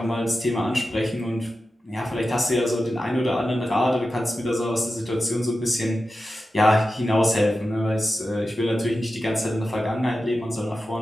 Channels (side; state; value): both; normal; correlation 0.92